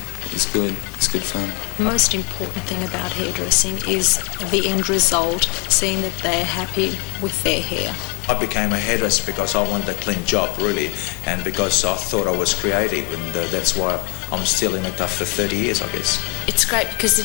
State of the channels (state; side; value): quieter; right; 33.2 dB